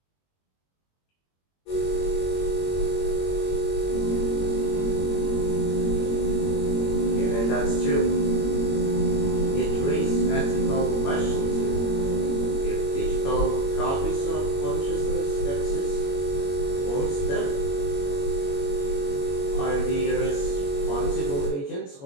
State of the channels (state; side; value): late; right; 21 ms